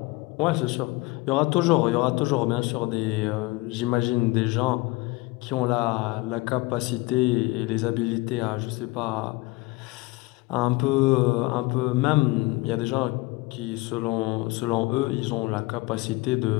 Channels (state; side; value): quieter; right; 22.2 dB